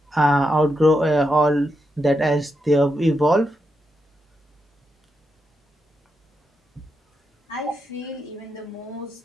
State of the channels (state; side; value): normal; both; correlation 0.84